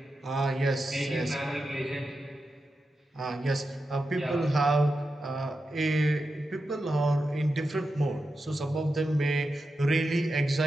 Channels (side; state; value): both; normal; correlation 0.89